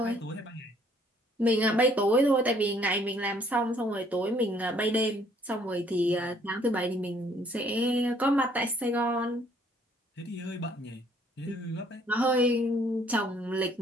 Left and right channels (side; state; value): both; normal; correlation 0.62